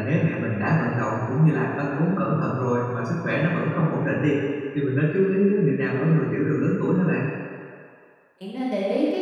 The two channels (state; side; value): identical; both; correlation 1.00